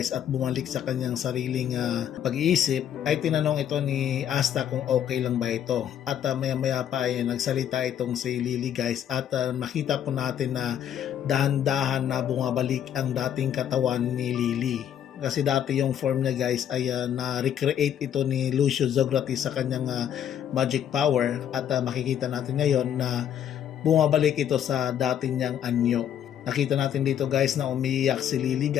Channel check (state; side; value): quieter; right; 9.7 dB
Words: at bumalik sa kanyang sariling pag-iisip ay tinanong ito ni Asta kung okay lang ba ito at maya-maya pa ay nagsalita itong si Lily guys at nakita po natin na dahan-dahan na bumabalik ang dating katawan ni Lily. Kasi dati yung form niya guys ay na-recreate ito ni Lucio Zografis sa kanyang magic power at makikita natin ngayon na bumabalik ito sa dating niyang anyo. Nakita natin dito guys na umiiyak si Lily